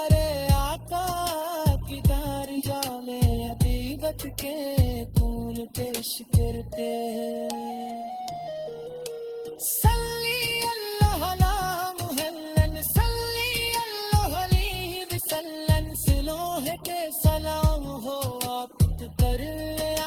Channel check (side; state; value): both; identical; correlation 1.00